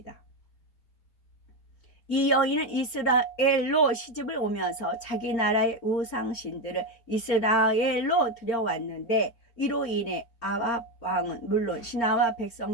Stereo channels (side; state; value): right; late; 4.3 ms